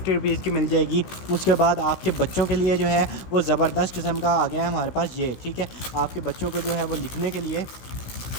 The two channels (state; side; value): late; right; 16 ms